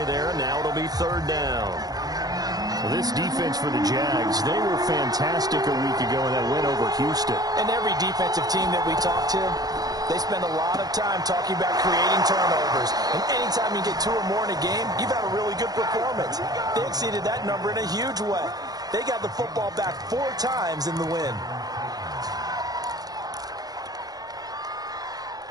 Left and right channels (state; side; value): late; left; 0.19 ms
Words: there, and now it'll be 3rd down. Well, this defense for the Jags, they were fantastic a week ago in that win over Houston. And every defensive team that we talk to, they spend a lot of time talking about creating turnovers. And anytime you get 2 or more in a game, you've had a really good performance. They exceeded that number in a huge way. They got the football back 4 times in the win.